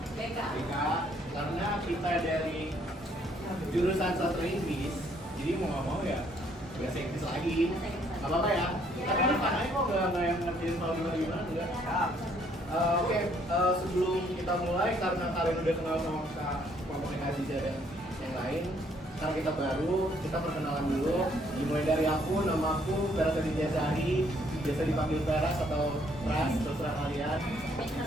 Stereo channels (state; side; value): normal; both; correlation 0.66